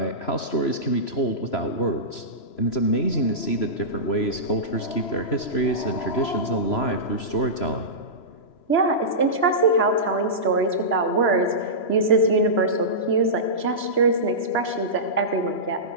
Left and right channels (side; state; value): right; late; 3.0 ms